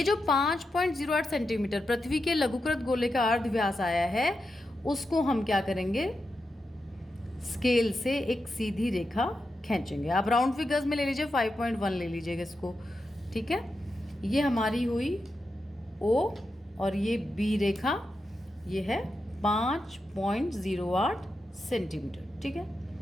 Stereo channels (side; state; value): both; normal; correlation 0.88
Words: जो 5.08 सेंटीमीटर पृथ्वी के लघुकृत गोले का अर्धव्यास आया है, उसको हम क्या करेंगे? स्केल से एक सीधी रेखा खींचेंगे। आप राउंड फिगर्स में ले लीजिए, 5.1 ले लीजिएगा इसको। ठीक है। ये हमारी हुई O, और ये B रेखा, ये है 5.08 सेंटीमीटर। ठीक है।